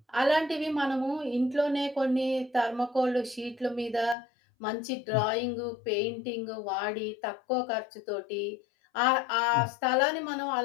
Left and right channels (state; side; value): drops out; right; at 4.2 s